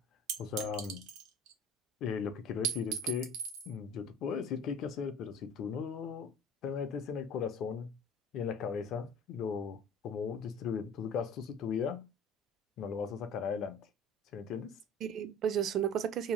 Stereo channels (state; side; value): normal; both; correlation 0.43